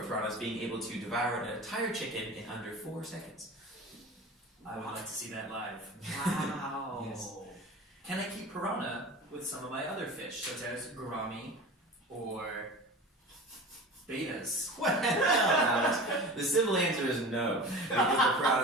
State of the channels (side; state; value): both; normal; correlation 0.34